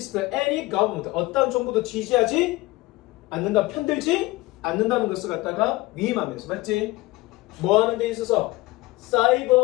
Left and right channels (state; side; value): quieter; right; 20.3 dB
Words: any government 어떤 정부도 지지하지 않는다 편들지 않는다는 것을 갖다가 위임하면서 맞지? 뭐 하는 데 있어서